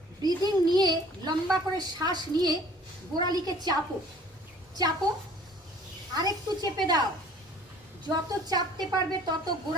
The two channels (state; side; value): normal; both; correlation 0.51